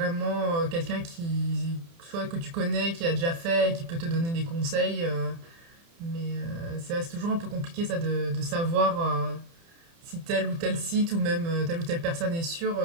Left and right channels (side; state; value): left; late; 30 ms